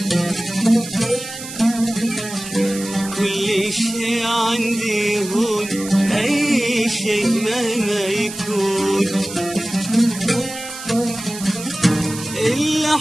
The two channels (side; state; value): right; noise; hiss, 11 dB below the sound